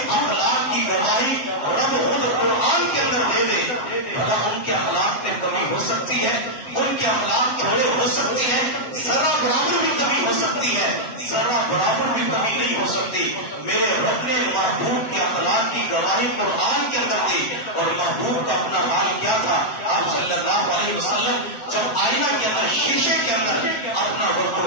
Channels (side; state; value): right; late; 7.3 ms